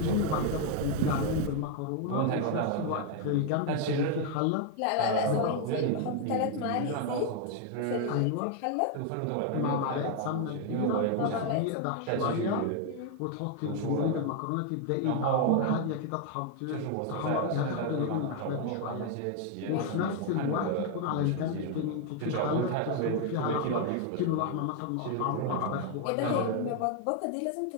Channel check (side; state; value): both; different; correlation 0.00